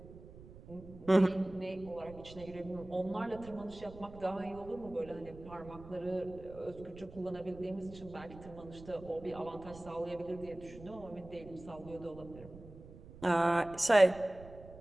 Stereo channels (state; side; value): noise; right; rumble, 17 dB below the sound